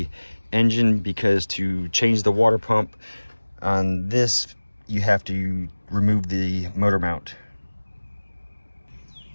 engine, because to change the water pump on this, you have to remove the motor mount.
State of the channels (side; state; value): both; inverted; correlation -1.00